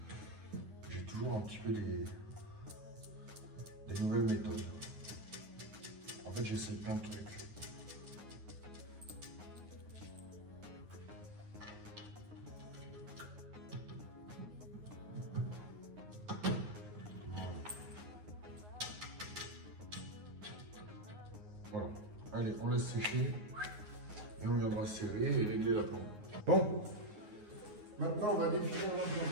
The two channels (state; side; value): late; left; 9.6 ms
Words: j'ai toujours un petit peu des nouvelles méthodes. En fait j'essaie plein de trucs. Voilà, allez, on laisse sécher et on viendra serrer et régler la plombe. Bon, maintenant on va définir